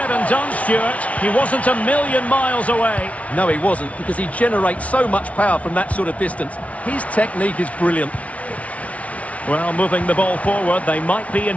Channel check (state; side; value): late; right; 0.066 ms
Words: and done, Stuart, he wasn't a million miles away. No, he wasn't, because he generates so much power from that sort of distance. His technique is brilliant. Well, moving the ball forward, they might be in